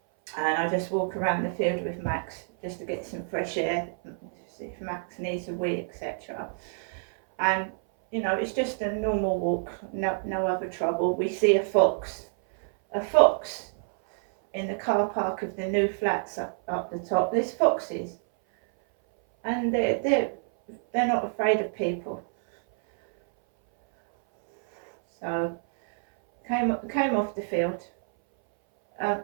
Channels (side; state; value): left; silent; 58 dB below the other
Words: and I just walk around the field with Max just to get some fresh air, see if Max needs a wee, etc. And you know, it's just a normal walk, no other trouble. We see a fox in the car park of the new flats up the top. There's foxes, and they're not afraid of people. So came off the field.